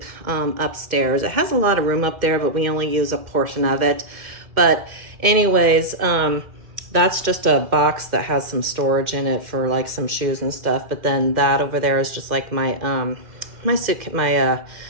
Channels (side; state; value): left; late; 2.1 ms